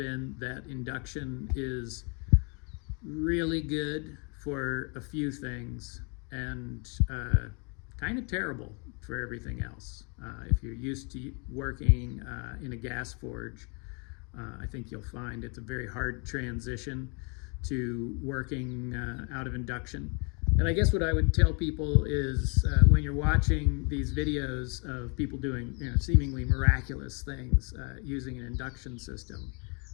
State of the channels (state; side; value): quieter; right; 34.5 dB